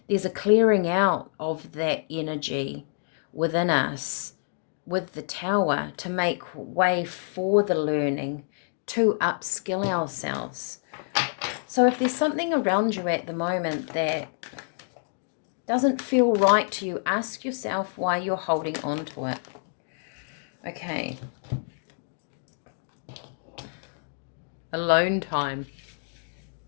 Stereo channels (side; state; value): right; silent; digital silence